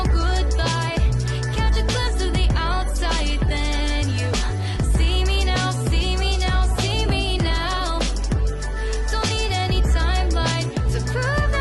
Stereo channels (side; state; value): both; identical; correlation 1.00